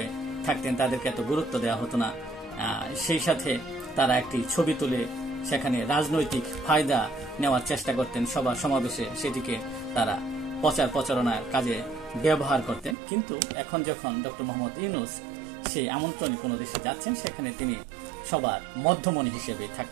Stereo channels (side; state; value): left; drops out; at 13.0 s